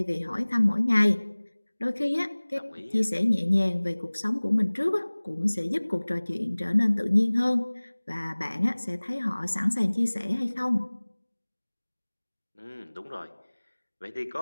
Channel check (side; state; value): both; inverted; correlation -1.00